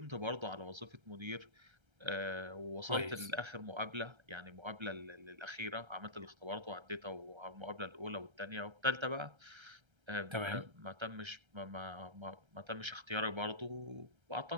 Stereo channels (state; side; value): late; left; 1.3 ms